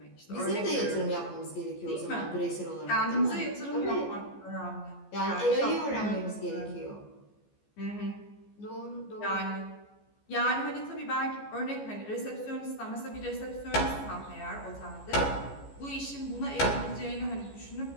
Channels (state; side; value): late; right; 14 ms